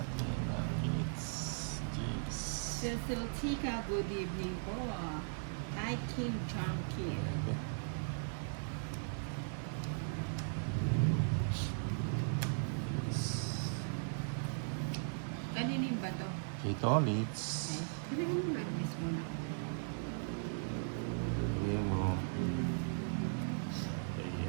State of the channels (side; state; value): left; silent; 52 dB below the other